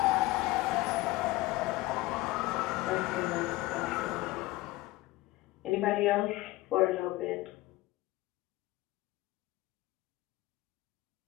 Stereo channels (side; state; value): right; quieter; 19.2 dB